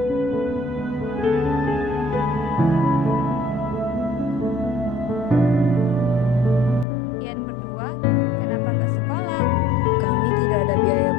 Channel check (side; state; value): right; drops out; at 6.9 s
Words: Kalian berdua, kenapa nggak sekolah? Kami tidak ada biaya